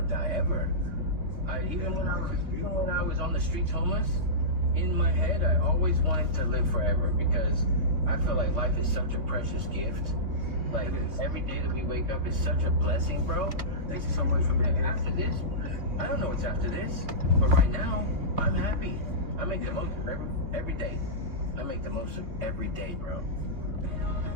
die ever. Even when I was on the streets homeless, in my head, I always wanted to live forever, because I feel like life is such a precious gift. Like, every day that we wake up is such a blessing, bro. Thank you so much for being here. After this, I don't know what's after this, but right now, I'm happy. I make the most of every day. I make the most of every day, bro.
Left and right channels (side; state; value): left; late; 2.7 ms